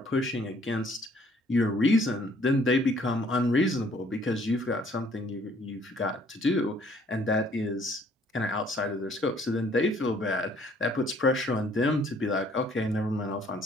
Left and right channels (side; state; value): both; normal; correlation 0.61